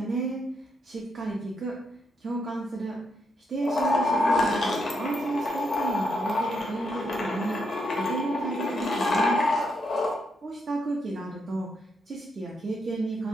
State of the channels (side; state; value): both; normal; correlation 0.79